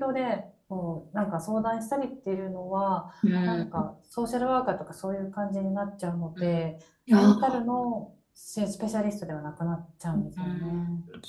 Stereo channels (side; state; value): both; identical; correlation 1.00